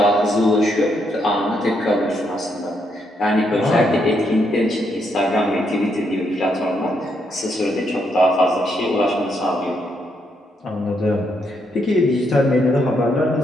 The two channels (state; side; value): normal; both; correlation 0.77